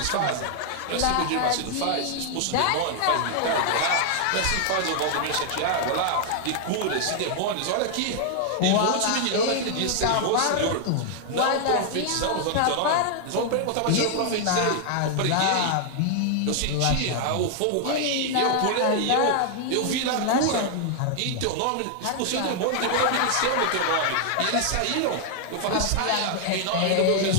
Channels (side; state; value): both; different; correlation 0.00